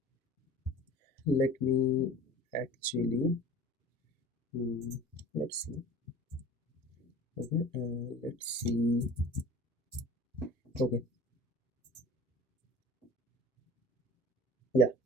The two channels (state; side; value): normal; both; correlation 0.42